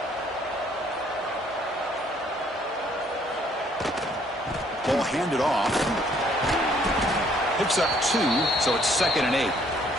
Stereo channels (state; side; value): normal; both; correlation 0.64